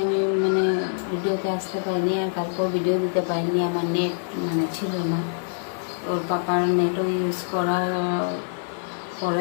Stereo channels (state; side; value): silent; right; digital silence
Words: আমি ভিডিওতে আসতে পারিনি, আর কালকেও ভিডিও দিতে পারিনি। আমার নেট ছিল না, ওর পাপার নেটও ইউজ করার